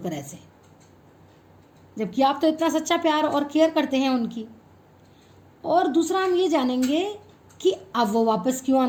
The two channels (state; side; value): identical; both; correlation 1.00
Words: ऐसे, जबकि आप तो इतना सच्चा प्यार और केयर करते हैं उनकी? और दूसरा हम ये जानेंगे कि अब वो वापस क्यों